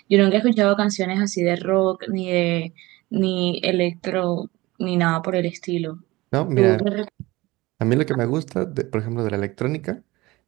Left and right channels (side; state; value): left; quieter; 20.5 dB